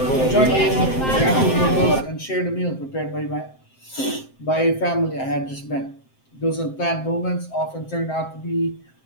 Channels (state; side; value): late; right; 7.6 ms